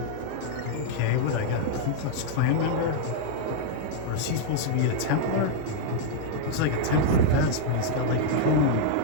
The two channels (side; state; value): both; different; correlation -0.01